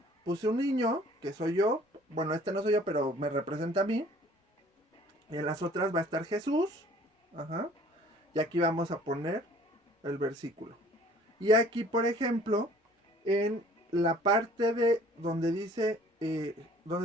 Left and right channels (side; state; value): both; normal; correlation 0.53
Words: puse un niño, que soy yo. Bueno, no soy yo, pero me representa a mí. Y en las otras va a estar Jesús. Y aquí vamos a poner el versículo. Y aquí, por ejemplo, en la parte de donde dice,